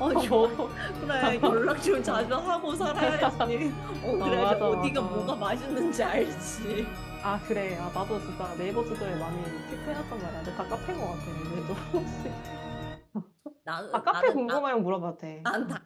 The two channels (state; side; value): identical; both; correlation 1.00